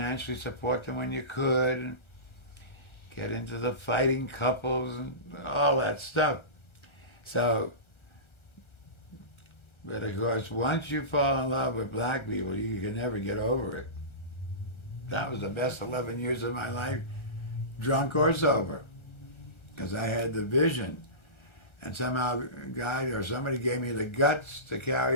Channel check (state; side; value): late; right; 1.3 ms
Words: support them when you could, and get into the fighting couples and all that stuff. So, but of course, once you fall in love with black people, you can never get over it. That was the best 11 years of my life, drunk or sober, because I had the vision. And somehow a guy or somebody gave me the guts to